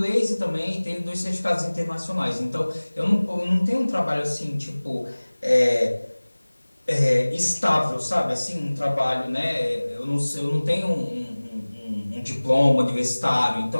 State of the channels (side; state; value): both; inverted; correlation -1.00